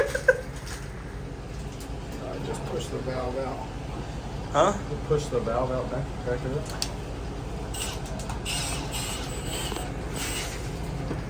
Just push the valve out. Huh? Push the valve out back of it.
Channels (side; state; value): both; identical; correlation 1.00